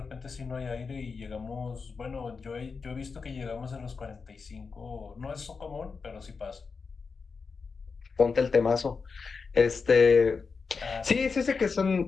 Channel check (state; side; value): quieter; right; 5.0 dB